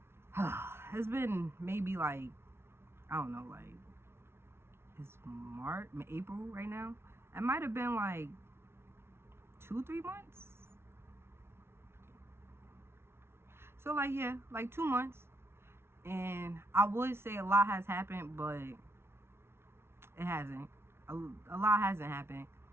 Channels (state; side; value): late; left; 0.12 ms